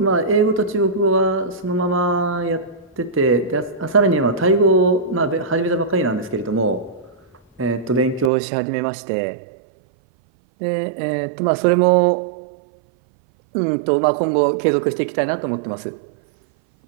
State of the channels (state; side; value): drops out; left; at 8.3 s